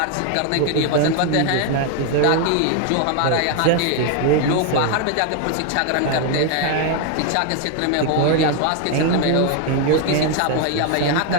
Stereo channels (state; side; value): different; both; correlation 0.01